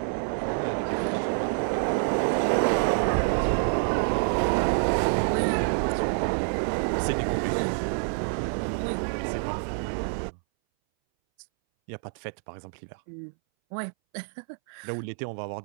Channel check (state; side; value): silent; left; 60 dB below the other